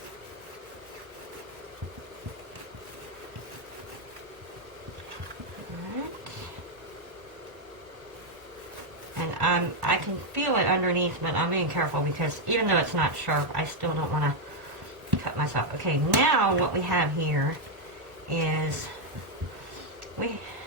I can feel it underneath, but I'm being careful because even though it's not sharp, I still don't want to cut myself. Okay, now what we have here is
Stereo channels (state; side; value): late; left; 1.1 ms